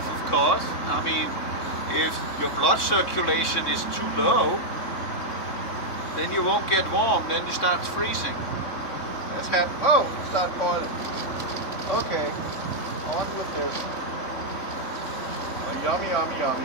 of course. I mean, if your blood circulation is too low, then you won't get warm, then it starts freezing. That's happened. Oh, it started boiling. Okay, on with this. Oh, yummy, yummy,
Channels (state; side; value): late; right; 3.6 ms